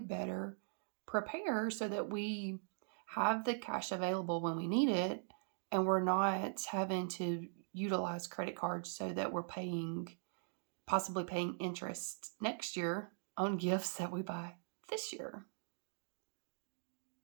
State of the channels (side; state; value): left; silent; digital silence